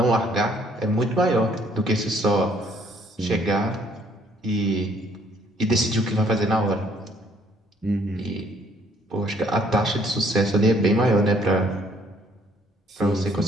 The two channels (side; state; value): both; normal; correlation 0.63